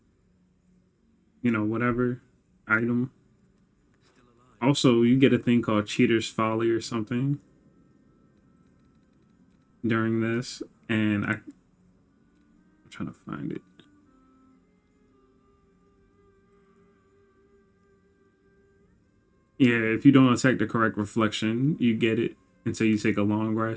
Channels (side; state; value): both; identical; correlation 1.00